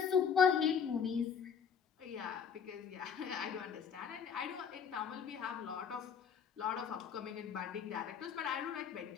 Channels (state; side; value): quieter; right; 7.1 dB